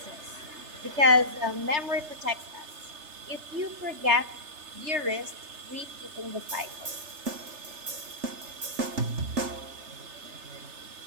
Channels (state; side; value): late; left; 3.3 ms